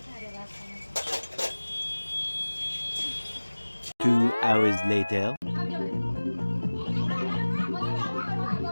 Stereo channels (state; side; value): inverted; both; correlation -1.00